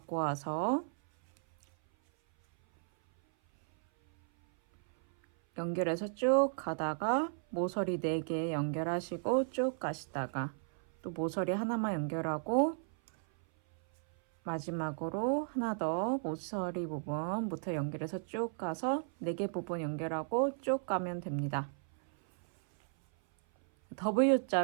와서 연결해서 쭉 가다가 모서리 4개 연결하시고 쭉 가시다가 또 모서리 하나만 연결하고 마지막으로 하나 더 모서리 부분부터 연결해서 쭉 가서 4개 부분 연결하고 쭉 가면 됩니다.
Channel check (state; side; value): silent; left; 55 dB below the other